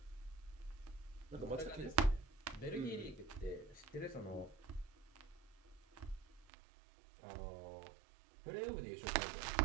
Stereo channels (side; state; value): left; drops out; at 6.5 s